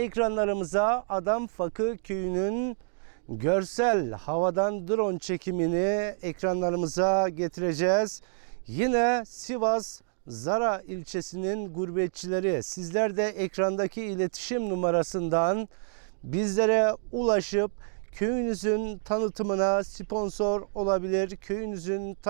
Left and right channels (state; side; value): silent; left; digital silence